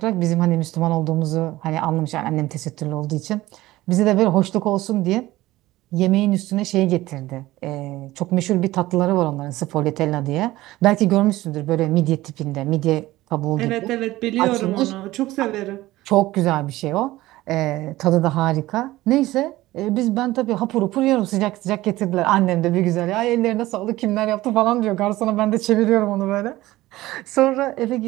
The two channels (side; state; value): left; quieter; 17.2 dB